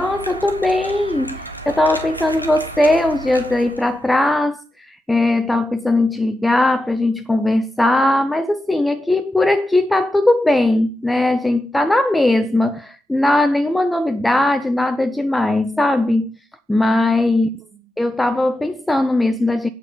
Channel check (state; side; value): normal; both; correlation 0.90